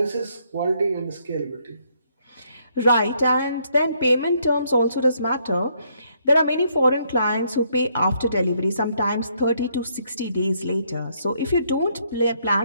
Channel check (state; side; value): inverted; both; correlation -0.71